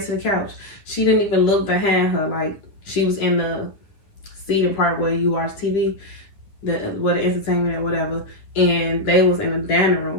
to the couch. She didn't even look behind her. Like, she was in the seating part where you watch TV, where the entertainment or whatever, and they was in the dining room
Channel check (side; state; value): right; late; 9.9 ms